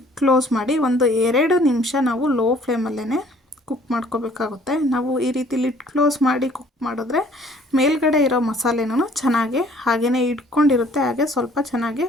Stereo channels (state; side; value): normal; both; correlation 0.57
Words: ಕ್ಲೋಸ್ ಮಾಡಿ ಒಂದು 2 ನಿಮಿಷ ನಾವು ಲೋ ಫ್ಲೇಮಲ್ಲೇ ಕುಕ್ ಮಾಡ್ಕೋಬೇಕಾಗುತ್ತೆ. ನಾವು ಈ ರೀತಿ ಲಿಡ್ ಕ್ಲೋಸ್ ಮಾಡಿ ಕುಕ್ ಮಾಡಿದ್ರೆ ಮೇಲ್ಗಡೆ ಇರೋ ಮಸಾಲೆನೂ ಚೆನ್ನಾಗಿ ಹಾಗೇ ಇಟ್ಕೊಂಡಿರುತ್ತೆ, ಹಾಗೆ ಸ್ವಲ್ಪ ಚೆನ್ನಾಗಿ